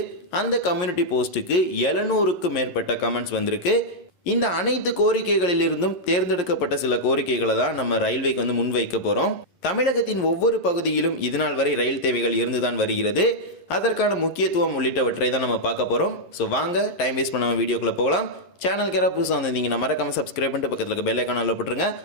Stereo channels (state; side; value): late; right; 11 ms